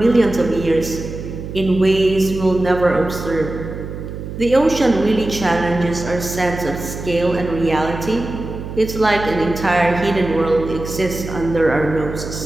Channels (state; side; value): noise; right; hum, 9 dB below the sound